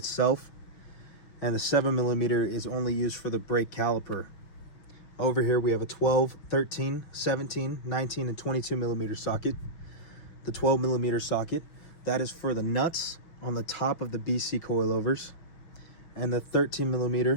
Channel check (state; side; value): late; right; 5.9 ms